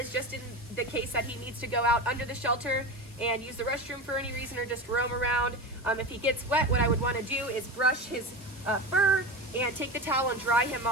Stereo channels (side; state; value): both; normal; correlation 0.25